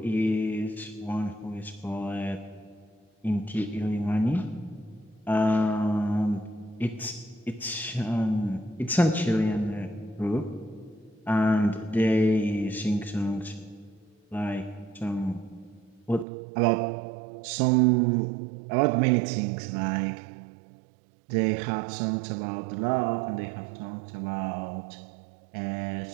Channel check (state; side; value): drops out; left; at 16.2 s